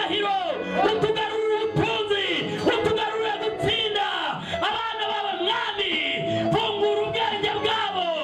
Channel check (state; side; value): identical; both; correlation 1.00